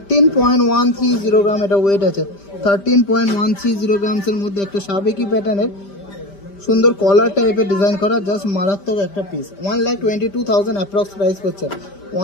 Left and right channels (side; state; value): right; late; 5.1 ms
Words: গ্রাম এটা ওয়েট আছে। 13.130 গ্রামসের মধ্যে একটা সাবেকি প্যাটার্নের সুন্দর কলার টাইপের ডিজাইন করা, জাস্ট মারাত্মক একটা পিস। 1,22,000 অ্যাপ্রক্স প্রাইস করছে।